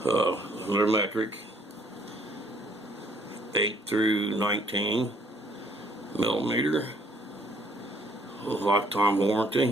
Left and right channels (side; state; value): both; normal; correlation 0.63